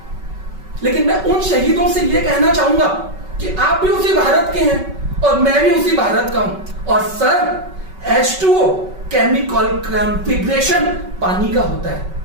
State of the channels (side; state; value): left; late; 5.3 ms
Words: लेकिन मैं उन शहीदों से यह कहना चाहूंगा कि आप भी उसी भारत के हैं और मैं भी उसी भारत का हूं। और सर, H2O केमिकल कॉन्फ़िगरेशन पानी का होता है,